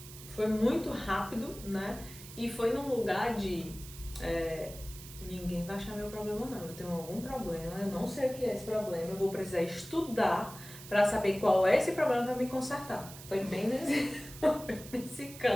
Foi muito rápido, né, e foi num lugar de ninguém vai achar meu problema não, eu tenho algum problema, eu não sei o que é esse problema, eu vou precisar estudar para saber qual é esse problema para me consertar. Foi bem nesse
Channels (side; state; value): right; noise; hiss, 15 dB below the sound